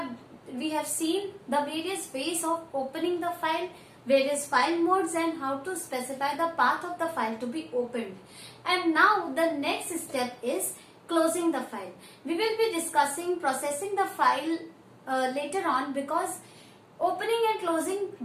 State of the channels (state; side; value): identical; both; correlation 1.00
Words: seen the various ways of opening the file, various file modes and how to specify the path of the file to be opened. And now the next step is closing the file. We will be discussing processing the file later on, because opening and closing